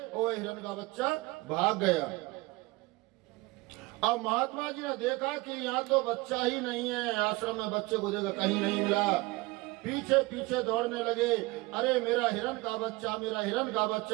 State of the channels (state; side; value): quieter; left; 23.0 dB